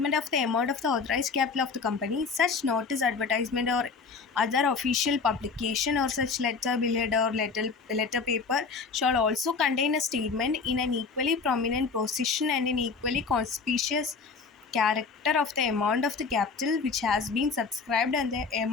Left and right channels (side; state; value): right; quieter; 4.9 dB